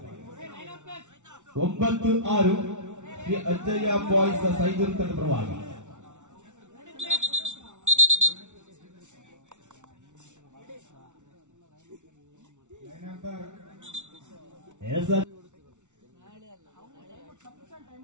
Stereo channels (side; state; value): left; late; 0.85 ms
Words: 9-6 ಶ್ರೀ ಅಜ್ಜಯ್ಯ ಬಾಯ್ಸ್ ಸೈದೂರು ತಂಡ ಪರವಾಗಿ.